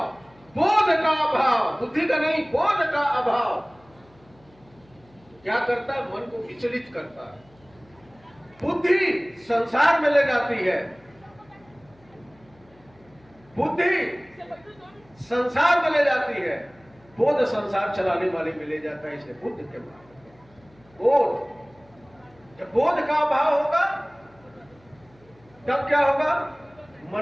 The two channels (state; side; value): noise; left; hum, 29 dB below the sound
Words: बोध का अभाव, बुद्धि का नहीं, बोध का अभाव। क्या करता है? मन को विचलित करता है। बुद्धि संसार में ले जाती है, बुद्धि संसार में ले जाती है, बोध संसार चलाने वाले में ले जाता है। इसलिए बुद्ध के मार्ग, बोध। जब बोध का अभाव होगा तब क्या होगा?